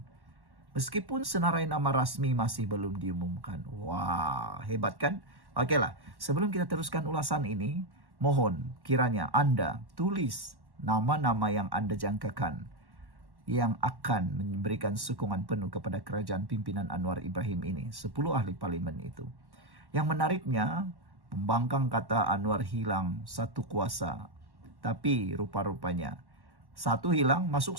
Meskipun senarai nama rasmi masih belum diumumkan. Wah, hebat kan? Okeylah, sebelum kita teruskan ulasan ini, mohon kiranya Anda tulis nama-nama yang Anda jangkakan yang akan memberikan sokongan penuh kepada kerajaan pimpinan Anwar Ibrahim ini. 10 ahli parlimen itu. Yang menariknya, pembangkang kata Anwar hilang satu kuasa. Tapi rupa-rupanya satu hilang masuk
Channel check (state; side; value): late; left; 1.1 ms